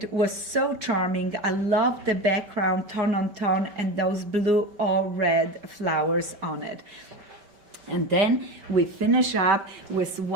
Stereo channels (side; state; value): left; late; 5.2 ms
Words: was so charming. I love the background tone on tone and those blue or red flowers on it. And then we finish up with